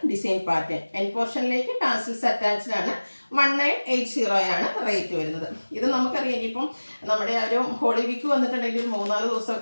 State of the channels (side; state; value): both; inverted; correlation -1.00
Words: ഡിസൈൻ പാറ്റേൺ. എൻ പോർഷനിലേക്ക് ടാസിൽസ് അറ്റാച്ച്ഡ് ആണ്. 1980 ആണ് റേറ്റ് വരുന്നത്. ഇത് നമുക്കറിയാം ഇനിയിപ്പം നമ്മുടെ ആ ഒരു ഹോളി വീക്ക് വന്നിട്ടുണ്ടെങ്കിൽ 3-4